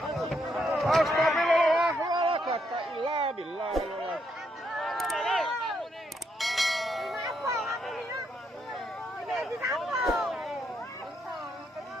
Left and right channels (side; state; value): both; normal; correlation 0.77